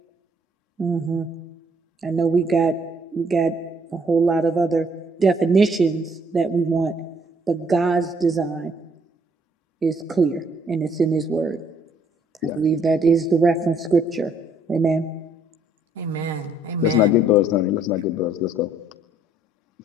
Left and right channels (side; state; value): both; normal; correlation 0.65